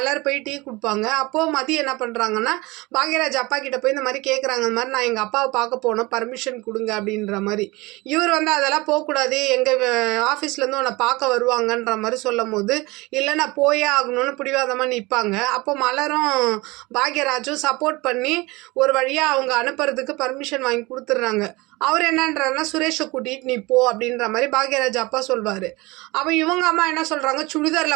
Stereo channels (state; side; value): quieter; left; 22.9 dB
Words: போய் டீ கொடுப்பாங்க. அப்போது மதி என்ன பண்ணுறாங்கன்னா பாக்யராஜ் அப்பா கிட்ட போய் இந்த மாதிரி கேட்குறாங்க. இந்த மாதிரி நான் எங்கள் அப்பாவை பார்க்க போனோம், பர்மிஷன் கொடுங்க அப்படின்ற மாதிரி. இவர் வந்து அதெல்லாம் போகக்கூடாது, எங்கள் ஆஃபீஸ்லேருந்து உன்னை பார்க்க வருவாங்கன்ற மாதிரி சொல்லும் போது இல்லை நான் போயே ஆகணும்னு பிடிவாதமாக நிற்பாங்க. அப்போ மலரும் பாக்யராஜும் சப்போர்ட் பண்ணி ஒரு வழியாக அவங்க அனுப்புறதுக்கு பர்மிஷன் வாங்கி கொடுத்துட்றாங்க. அவர் என்னன்றாருன்னா சுரேஷை கூட்டிகிட்டு நீ போ அப்படின்ற மாதிரி பாக்யராஜ் அப்பா சொல்வார். அப்போ இவங்க அம்மா என்ன சொல்கிறாங்க,